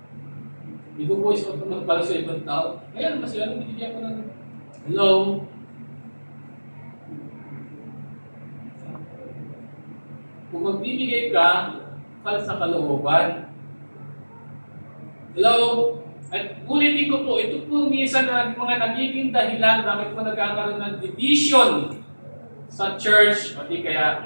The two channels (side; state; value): both; inverted; correlation -1.00